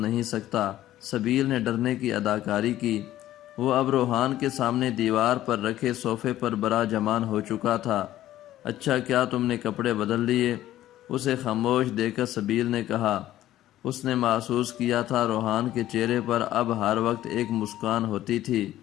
سکتا۔ سبیل نے ڈرنے کی اداکاری کی۔ وہ اب روحان کے سامنے دیوار پر رکھے صوفے پر براجمان ہو چکا تھا۔ اچھا، کیا تم نے کپڑے بدل لیے؟ اسے خاموش دیکھ کر سبیل نے کہا۔ اس نے محسوس کیا تھا روحان کے چہرے پر اب ہر وقت ایک مسکان ہوتی تھی،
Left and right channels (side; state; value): right; quieter; 13.8 dB